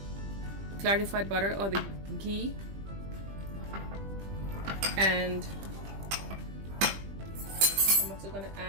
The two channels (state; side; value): late; left; 20 ms